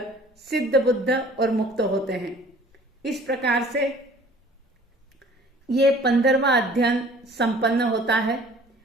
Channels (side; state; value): both; normal; correlation 0.51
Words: सिद्ध बुद्ध और मुक्त होते हैं। इस प्रकार से ये 15वां अध्ययन संपन्न होता है।